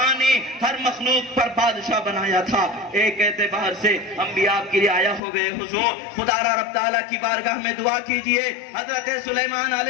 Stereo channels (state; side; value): drops out; right; at 5.2 s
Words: ہر مخلوق پر بادشاہ بنایا تھا۔ ایک اعتبار سے ہم بھی آپ کی رعایا ہو گئے، حضور خدا را رب تعالیٰ کی بارگاہ میں دعا کیجئے۔ حضرت سلیمان